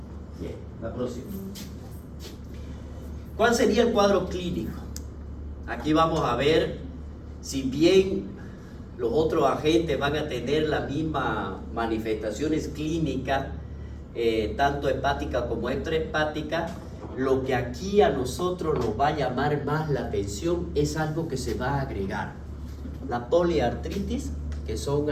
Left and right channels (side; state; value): both; identical; correlation 1.00